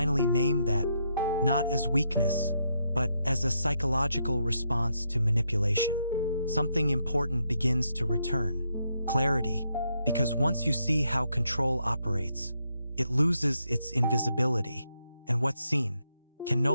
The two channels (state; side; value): inverted; both; correlation -0.78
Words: name that, not as weakness, but as a psychological response to manipulation, something important begins to return. Clarity. Because once you see how control operates, It loses its invisibility, and what's seen can